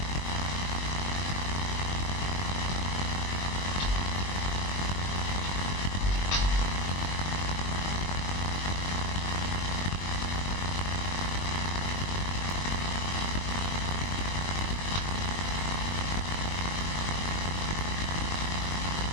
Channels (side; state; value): right; late; 20 ms